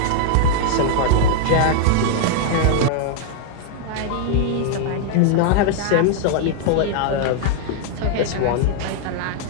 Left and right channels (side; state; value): both; different; correlation 0.00